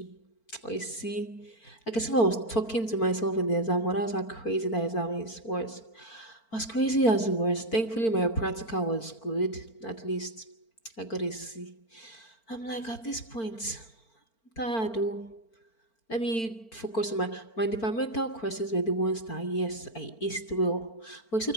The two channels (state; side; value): late; right; 4.4 ms